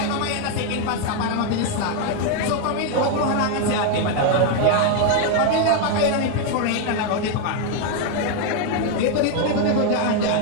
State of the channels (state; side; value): different; both; correlation 0.01